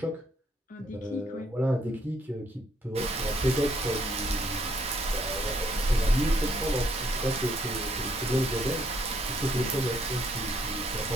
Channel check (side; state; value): both; normal; correlation 0.69